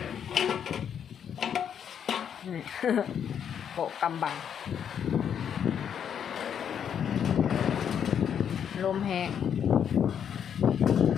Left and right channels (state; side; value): quieter; right; 8.4 dB